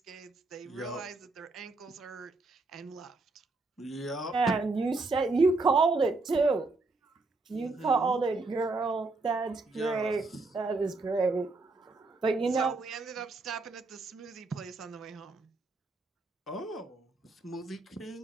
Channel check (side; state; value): left; quieter; 3.5 dB